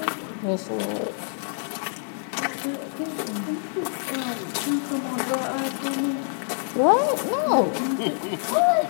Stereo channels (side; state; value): right; silent; digital silence